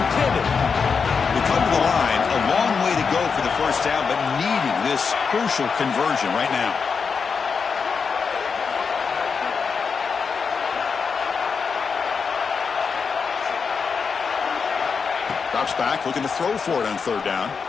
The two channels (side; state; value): right; quieter; 5.6 dB